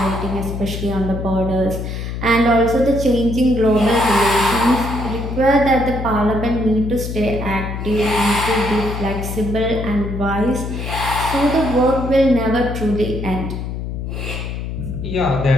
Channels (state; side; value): noise; left; hum, 5 dB below the sound